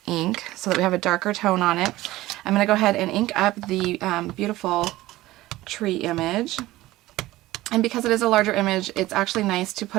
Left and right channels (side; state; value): left; quieter; 17.2 dB